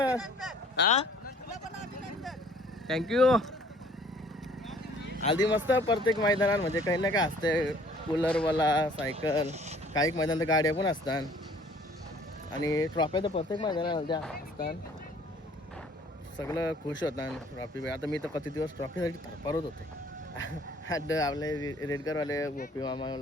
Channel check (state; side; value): normal; both; correlation 0.56